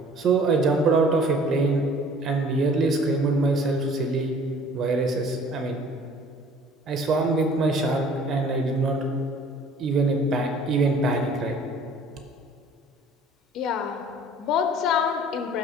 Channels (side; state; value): both; normal; correlation 0.51